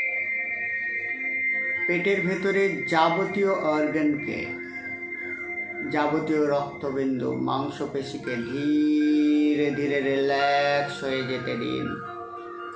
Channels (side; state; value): both; identical; correlation 1.00